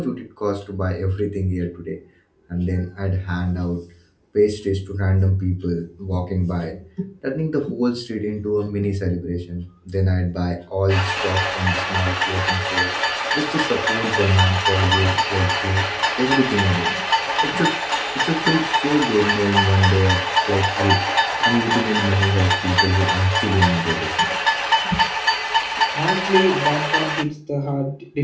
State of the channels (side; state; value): both; identical; correlation 1.00